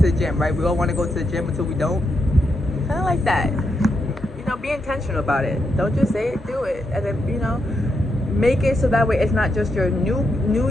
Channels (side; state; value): both; normal; correlation 0.83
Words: the gym, right? We all want to go to the gym until we don't. Kind of like that. Be intentional about it. Don't just say it, do it, and then make it so that way it's not just your new